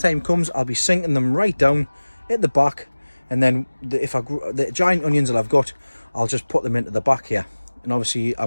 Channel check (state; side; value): inverted; both; correlation -1.00